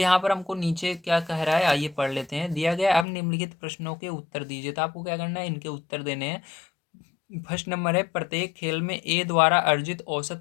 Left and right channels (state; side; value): drops out; right; at 3.1 s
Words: पर हमको नीचे क्या कह रहा है, आइए पढ़ लेते हैं। दिया गया, अब निम्नलिखित प्रश्नों के उत्तर दीजिए। तो आपको क्या करना है, इनके उत्तर देने हैं। फर्स्ट नंबर है, प्रत्येक खेल में ए द्वारा अर्जित